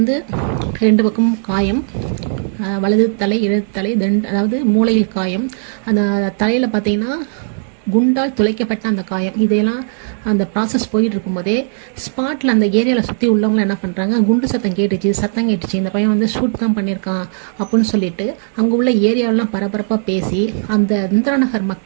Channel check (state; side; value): silent; left; digital silence